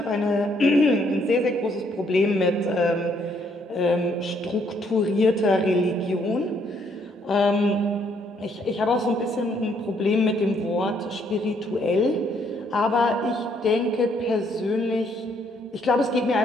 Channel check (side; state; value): both; normal; correlation 0.69